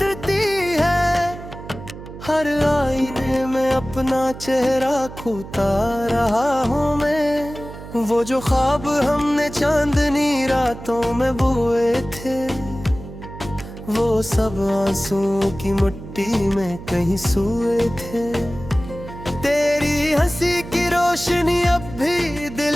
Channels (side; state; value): right; noise; hum, 13 dB below the sound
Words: है, हर आईने में अपना चेहरा खोता रहा हूँ मैं। वो जो ख्वाब हमने चांदनी रातों में बोए थे, वो सब आंसुओं की मिट्टी में कहीं सोए थे। तेरी हंसी की रोशनी अब भी दिल